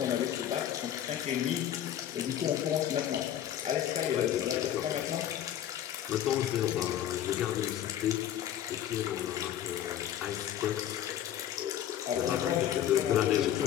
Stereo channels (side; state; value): right; quieter; 11.0 dB